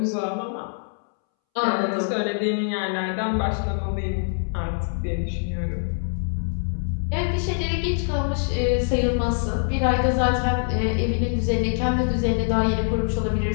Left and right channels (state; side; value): silent; right; 63 dB below the other